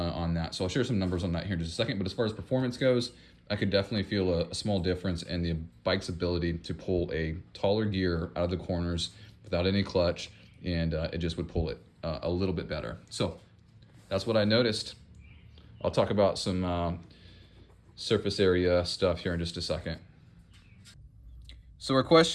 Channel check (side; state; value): both; identical; correlation 1.00